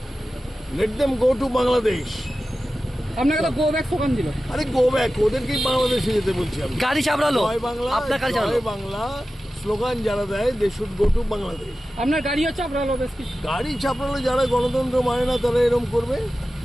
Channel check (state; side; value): normal; both; correlation 0.94